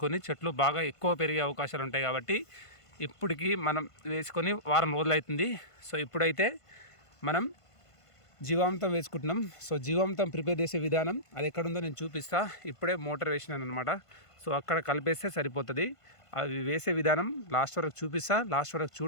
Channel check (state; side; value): late; right; 1.5 ms